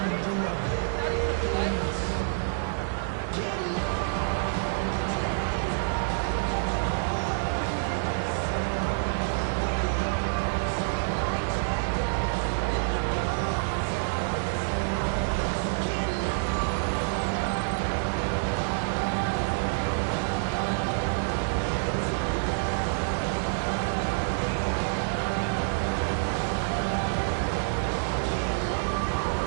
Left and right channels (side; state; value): left; silent; digital silence